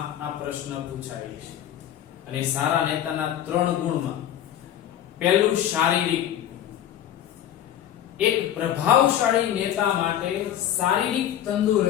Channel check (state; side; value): quieter; right; 11.0 dB